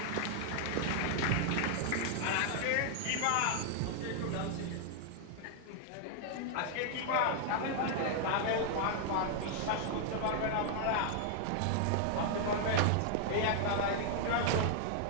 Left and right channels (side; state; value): both; different; correlation 0.00